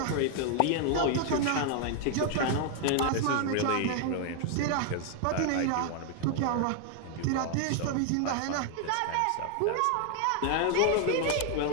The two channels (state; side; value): different; both; correlation 0.00